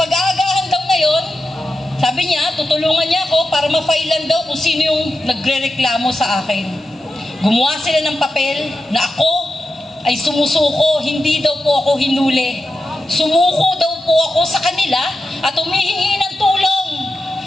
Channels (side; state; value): both; normal; correlation 0.90